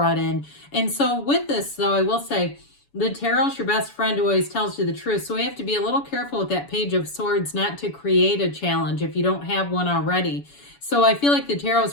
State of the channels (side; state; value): right; late; 7.0 ms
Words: in. And so with this though, I will say, the tarot's your best friend who always tells you the truth. So we have to be a little careful with that Page of Swords not to create a challenge if you don't have one already. So I feel like the tarot